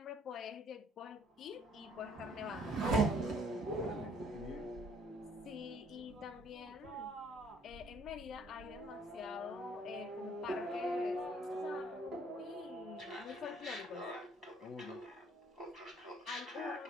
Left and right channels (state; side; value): normal; both; correlation 0.61